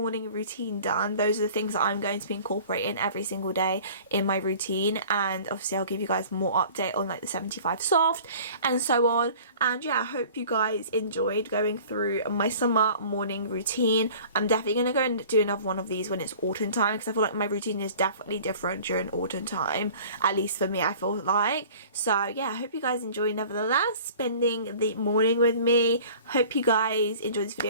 routine done. Those are the things that I'm going to be incorporating every single day in my routine, and obviously I'll give you guys more update on like the 75 soft and so on. And yeah, I hope you guys enjoyed going through my summer morning routine. I'm definitely going to go and do another one of these when it's autumn time, because I feel like my routine is definitely different during autumn time, at least for me, I feel like. So yeah, I hope you guys enjoy nevertheless spending the morning with me. Hope you guys enjoyed this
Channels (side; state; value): both; inverted; correlation -0.46